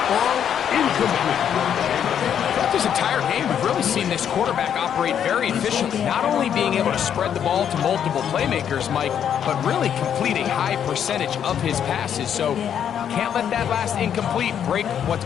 ball incomplete. This entire game, we've really seen this quarterback operate very efficiently, not only being able to spread the ball to multiple playmakers, Mike, but really completing high percentage of his passes. So can't let that last incomplete break what's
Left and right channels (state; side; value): quieter; right; 8.9 dB